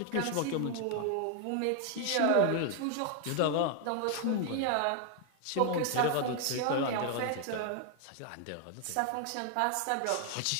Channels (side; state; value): both; different; correlation 0.00